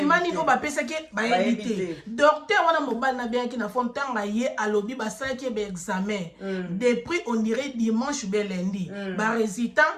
niveau bapesa ke bayebite docteur wana mobile na bien ki na fond tanga ye alobi basala ki be examen depuis on dirait dimanche be lundi ba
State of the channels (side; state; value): both; identical; correlation 1.00